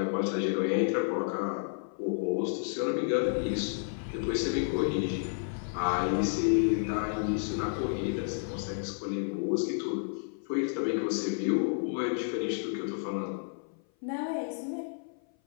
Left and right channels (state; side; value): silent; right; 55 dB below the other